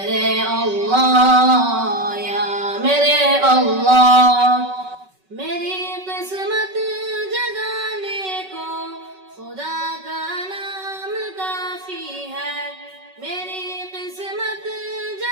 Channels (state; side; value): late; left; 5.3 ms